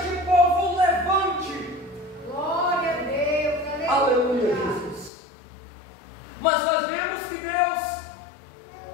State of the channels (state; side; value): drops out; right; at 5.1 s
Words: povo levante. Glória a Deus, aleluia, Jesus. Mas nós vemos que Deus